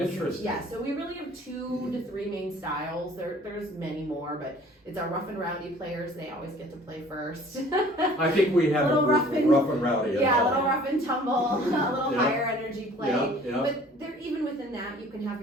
Yeah, so we really have 2 to 3 main styles. There's many more, but it's our rough and rowdy players. They always get to play first. I think we have Little a rough and rowdy. Yeah, a little rough and tumble, a little Yeah. higher energy play. Yeah. But there, even within that, you can have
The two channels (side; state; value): both; normal; correlation 0.51